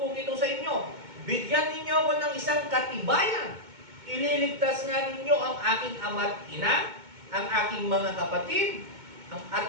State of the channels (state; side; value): late; left; 2.2 ms